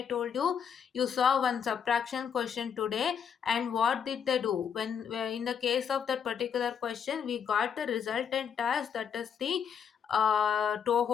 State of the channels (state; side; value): quieter; right; 7.6 dB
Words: told you, you saw one subtraction question today, and what did they do when in the case of that particular question we got the resultant as, that is the